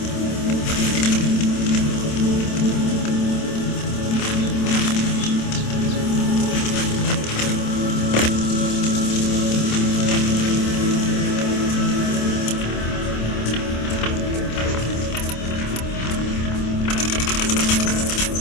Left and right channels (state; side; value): late; right; 27 ms